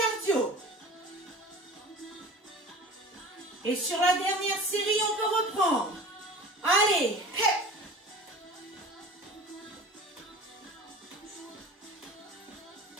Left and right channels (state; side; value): normal; both; correlation 0.39